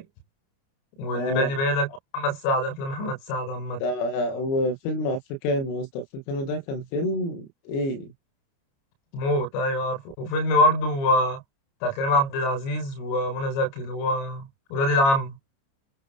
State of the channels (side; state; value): right; late; 29 ms